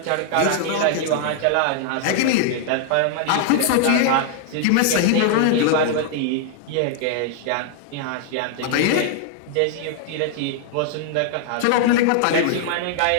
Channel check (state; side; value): different; both; correlation 0.00